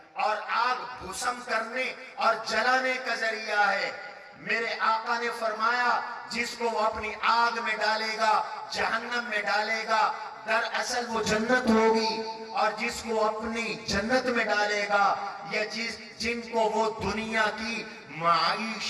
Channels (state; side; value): identical; both; correlation 1.00